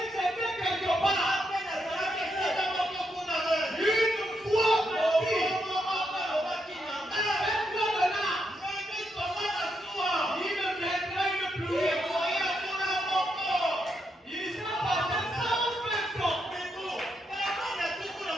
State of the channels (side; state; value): both; normal; correlation 0.80